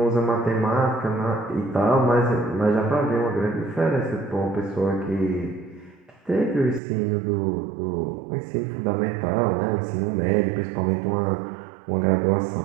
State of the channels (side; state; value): left; drops out; at 6.8 s